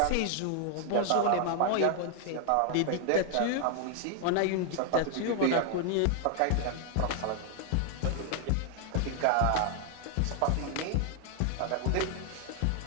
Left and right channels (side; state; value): both; different; correlation 0.00